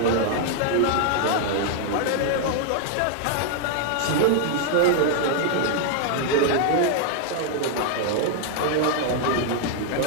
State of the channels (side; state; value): both; different; correlation 0.00